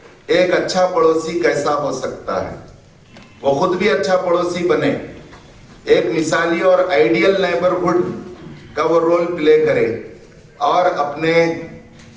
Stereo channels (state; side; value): identical; both; correlation 1.00